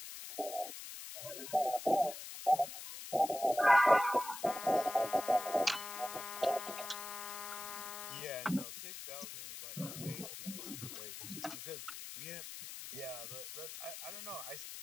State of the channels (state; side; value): noise; left; hiss, 10 dB below the sound